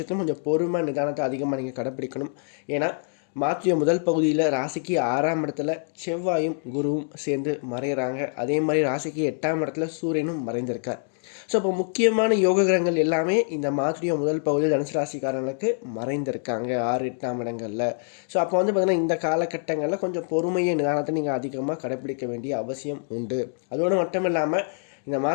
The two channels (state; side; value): silent; right; 61 dB below the other